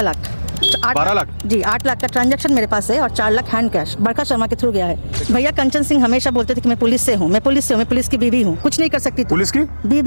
लाख। 12 लाख जी, 8 लाख का ट्रांजैक्शन मेरे पास है और 4 लाख हैंड कैश बरखा शर्मा के थ्रू गया है। भैया कंचन सिंह हमेशा बोलते थे कि मैं पुलिस से हूँ, मैं पुलिस की बीवी हूँ, कुछ नहीं कर सकती। पुलिस की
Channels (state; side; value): inverted; both; correlation -1.00